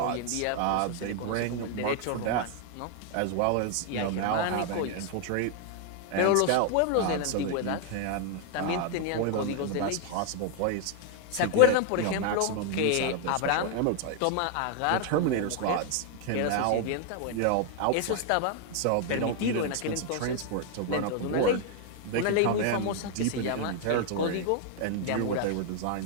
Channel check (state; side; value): different; both; correlation 0.00